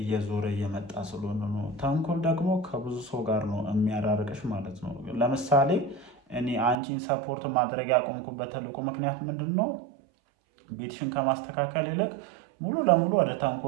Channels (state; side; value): drops out; left; at 6.8 s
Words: እየመጣ ስለሆነ ነው። ተንኮል ደግሞ ከብዙ ሰው ጋር ነው የሚያራርቅሽ ማለት ነው። ለምሳሌ እኔ አንቺን ሰፖርት ማድረግ ያቆምኩበት ትልቁ ምክንያት ምንድን ነው? ቤትሽን ከማስተካከል ይልቅ ሙሉ ለሙሉ ወደ